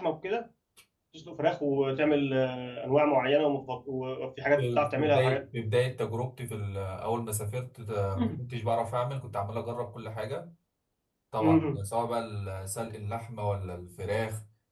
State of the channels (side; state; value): both; identical; correlation 1.00